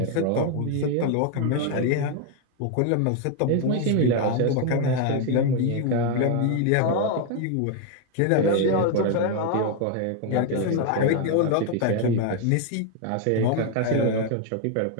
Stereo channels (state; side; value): different; both; correlation 0.01